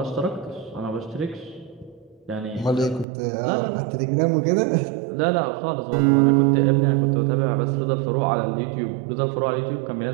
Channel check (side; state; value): left; drops out; at 3.1 s